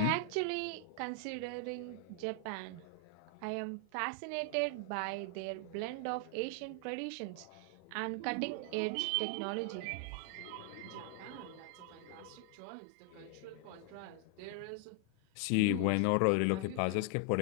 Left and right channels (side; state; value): both; different; correlation 0.00